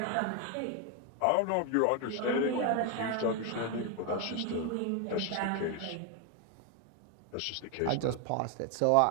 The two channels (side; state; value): both; different; correlation 0.01